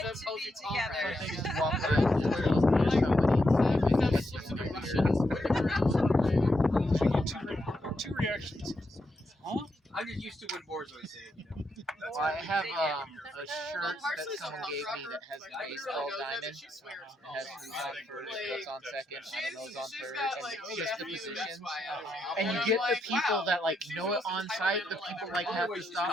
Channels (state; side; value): normal; both; correlation 0.82